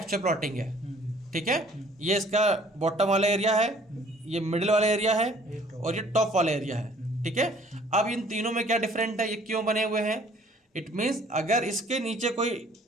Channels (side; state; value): both; normal; correlation 0.56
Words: प्लॉटिंग है। ठीक है, ये इसका बॉटम वाला एरिया है, ये मिडिल वाला एरिया है और ये टॉप वाला एरिया है। ठीक है, अब इन तीनों में क्या डिफरेंट है, ये क्यों बने हुए हैं। इट मीन्स अगर इसके नीचे कोई